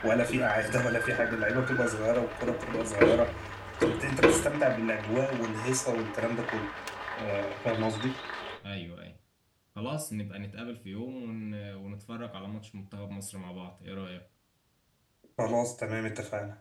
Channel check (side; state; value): both; identical; correlation 1.00